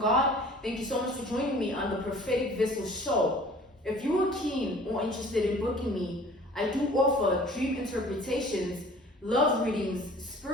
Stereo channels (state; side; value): normal; both; correlation 0.48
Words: Thank you so much for joining me on the Prophetic Vessel Show. If you are keen or interested in booking me, I do offer dream interpretations, love readings,